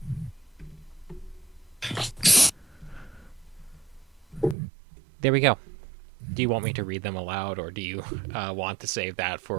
there we go. Do you want me to read them aloud, or do you want to save that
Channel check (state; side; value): drops out; left; at 4.5 s